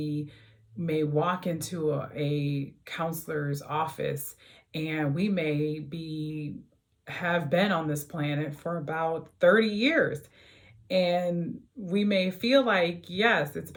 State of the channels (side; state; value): both; identical; correlation 1.00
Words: may walk into a counselor's office, and we may be have been on this planet for about 30 years. And we may feel like, yes, it's